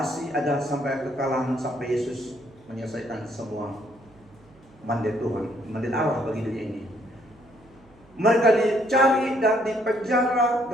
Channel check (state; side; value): noise; right; hum, 28 dB below the sound